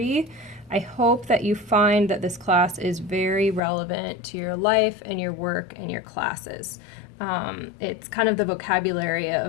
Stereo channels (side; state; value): right; drops out; at 3.6 s